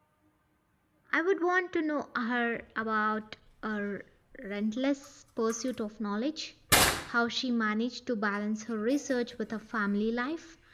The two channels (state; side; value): identical; both; correlation 1.00